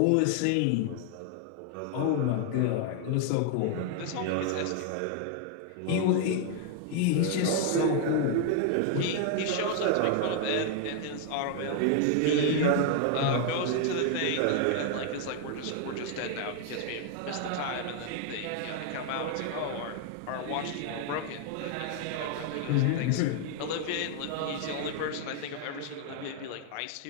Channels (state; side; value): different; both; correlation 0.00